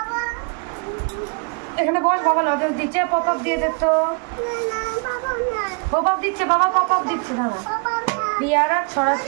এখানে বস, বাবা লজেন্স দিচ্ছে, পপ আপ দিয়ে দে তো। পপ আপ দিচ্ছে বাবা, পপ আপ দিচ্ছে। দাঁড়া পিয়ারা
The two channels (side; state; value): left; quieter; 35.0 dB